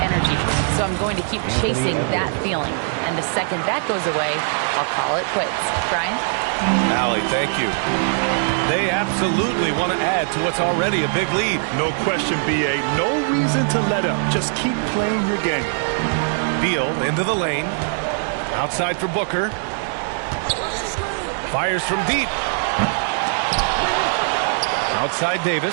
So I'm going to keep chasing that feeling. And the second that goes away, I'll call it quits. Brian? Allie, thank you. They absolutely want to add to what's already a big lead. No question, B.A. No reason to let up. Just keep playing your game. Beal into the lane. Outside for Booker. Fires from deep. Outside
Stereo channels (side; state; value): left; silent; 60 dB below the other